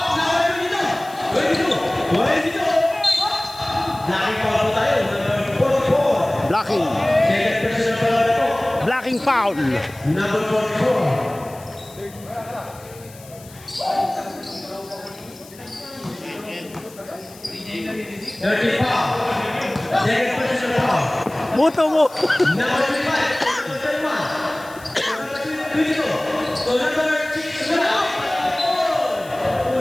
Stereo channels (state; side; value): noise; left; hiss, 21 dB below the sound